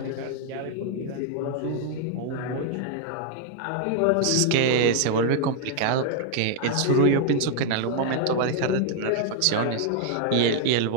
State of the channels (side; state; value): both; different; correlation 0.00